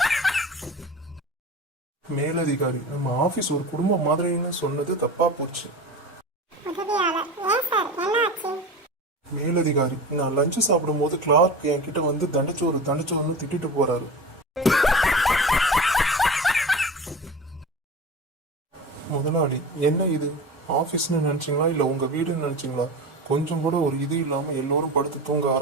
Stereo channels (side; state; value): both; normal; correlation 0.31